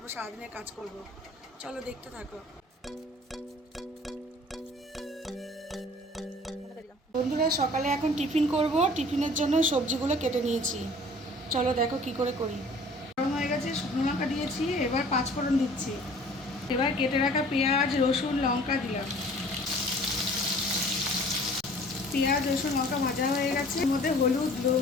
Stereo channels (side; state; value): both; normal; correlation 0.50